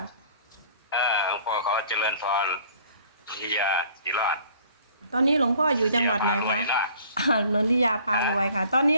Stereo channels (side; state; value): both; inverted; correlation -0.53